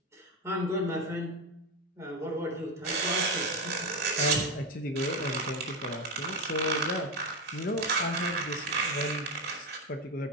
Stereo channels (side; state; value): both; normal; correlation 0.13